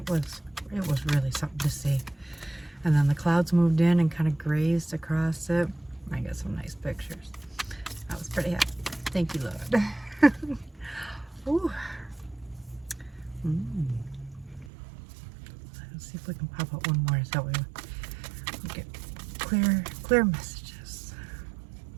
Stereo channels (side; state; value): left; drops out; at 14.7 s